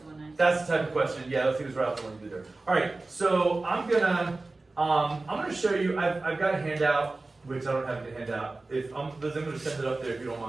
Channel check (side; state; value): left; quieter; 3.3 dB